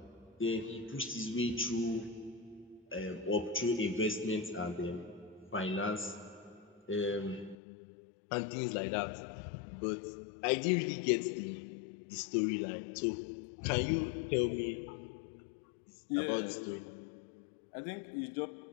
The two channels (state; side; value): drops out; right; at 7.6 s